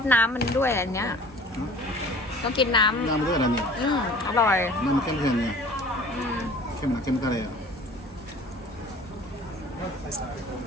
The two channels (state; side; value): normal; both; correlation 0.46